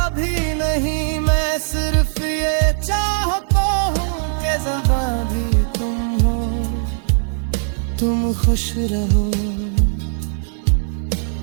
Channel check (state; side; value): silent; left; digital silence